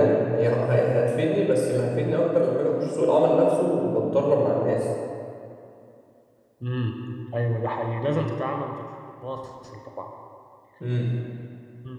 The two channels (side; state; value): both; identical; correlation 1.00